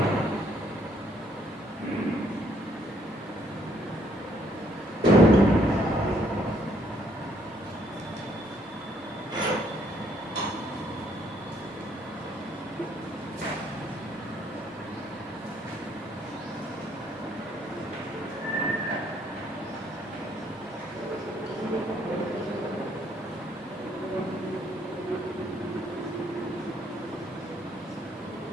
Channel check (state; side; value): normal; both; correlation 0.68